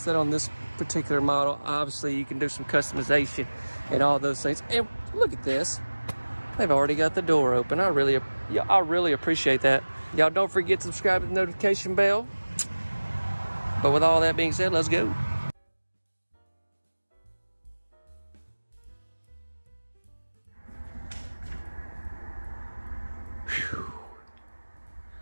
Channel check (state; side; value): inverted; both; correlation -1.00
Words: that on this particular model. Obviously, you can do some customization and all those things. And look at this. They've already got the door open. I really appreciate that. Y'all don't forget to subscribe to the notification bell. But with all that being said, let's go.